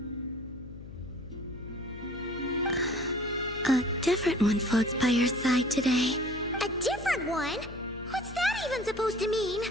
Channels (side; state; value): left; noise; hum, 14 dB below the sound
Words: A different one floats by your side today. A different one? What's that even supposed to mean?